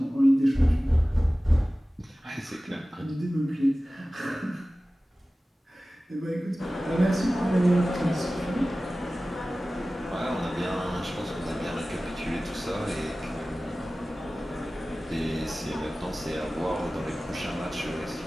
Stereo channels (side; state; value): both; normal; correlation 0.97